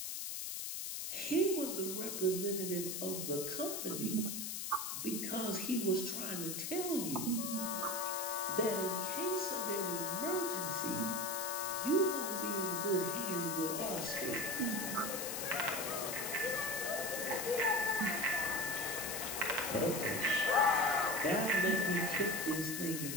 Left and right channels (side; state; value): left; noise; hiss, 4 dB below the sound